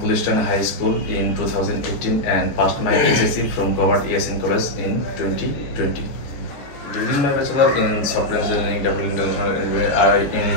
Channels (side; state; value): right; late; 14 ms